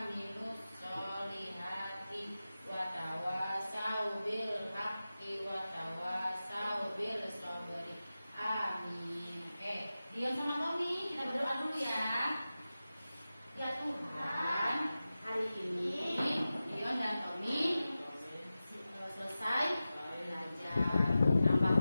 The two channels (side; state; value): both; inverted; correlation -0.94